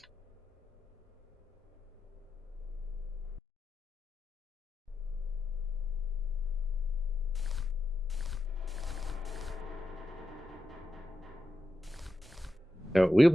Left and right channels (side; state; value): both; normal; correlation 0.90